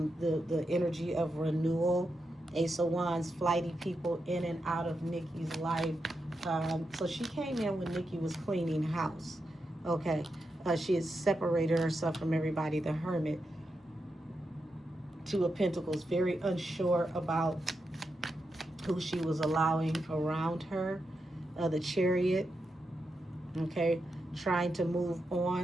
energy of renewal. Ace of Wands, flighty people in and out of Nikki's life. So she came in when Nikki was cleaning house. Okay. She had separated herself from everybody. The Hermit. Two of Pentacles. Very unsure about who she was allowing around her. The Chariot. Okay. Trying to move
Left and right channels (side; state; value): both; normal; correlation 0.86